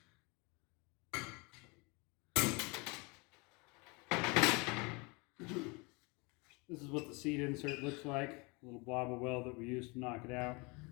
This is what the seat insert looks like, a little blob of weld that we used to knock it out.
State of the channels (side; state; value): right; quieter; 28.3 dB